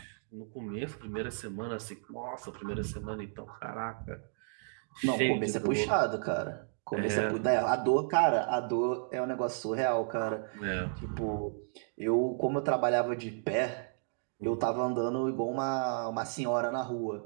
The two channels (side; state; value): left; silent; digital silence